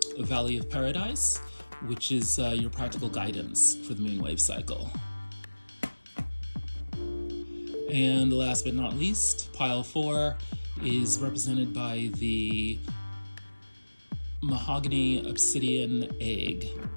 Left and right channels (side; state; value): both; inverted; correlation -1.00